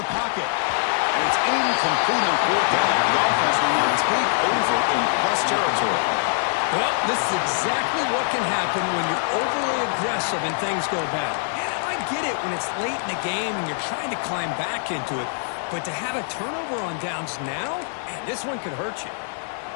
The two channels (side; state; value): right; silent; digital silence